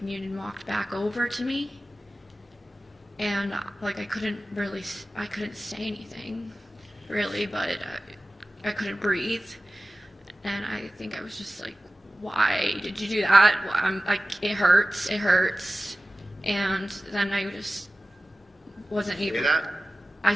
Noonan walked back over to me, and like I couldn't say anything, really, but I couldn't breathe, and I think I was just like, why did you do that? I'm like, it hurts, and then I just wasn't able. Say that? I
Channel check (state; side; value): normal; both; correlation 0.96